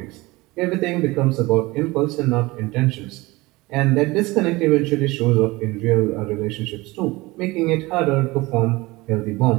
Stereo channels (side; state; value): left; quieter; 21.7 dB